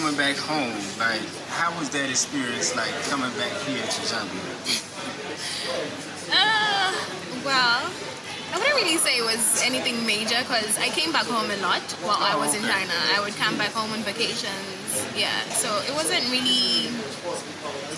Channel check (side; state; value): both; identical; correlation 1.00